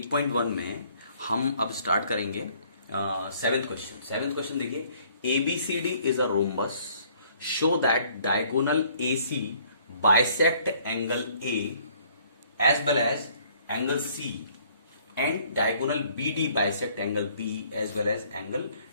में हम अब स्टार्ट करेंगे सेवेंथ क्वेश्चन। सेवेंथ क्वेश्चन देखिए, ABCD is a rhombus, show that diagonal AC bisect angle A as well as angle C and diagonal BD bisect angle B as well as angle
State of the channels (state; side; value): inverted; both; correlation -0.60